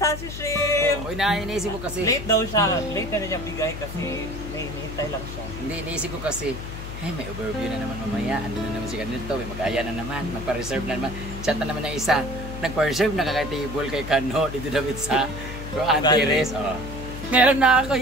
Shim! Uy, iniisip ko kasi. Late daw siya. Late na niya bigay kasi nahihintay lang siya. Hindi, iniisip ko kasi. Hey, may overview na naman mamaya. Ando na naman si ganito. May mag-aya na naman. Magpa-reserve na naman. Chat na naman ng isa. Nagpa-reserve na kakay-table kay Kano. Dito David sa Antares. Oh. Meron na ako.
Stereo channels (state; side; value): noise; left; hum, 9 dB below the sound